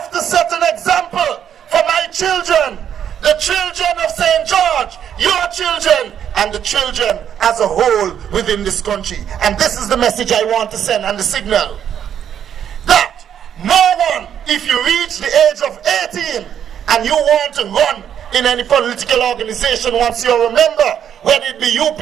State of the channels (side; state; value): left; quieter; 9.2 dB